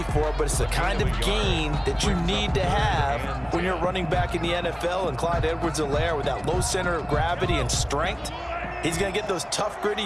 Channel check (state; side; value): identical; both; correlation 1.00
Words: for, but it's the kind of gain that you need to have when you're running back in the NFL. And Clyde Edwards-Helaire, with that low center of gravity and strength, he's going to get those tough, gritty